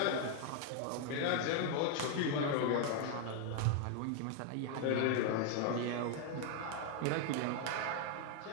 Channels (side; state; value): both; different; correlation 0.01